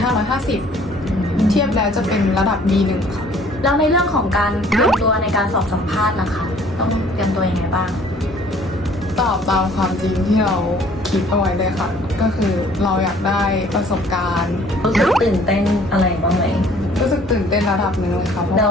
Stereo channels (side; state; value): both; normal; correlation 0.56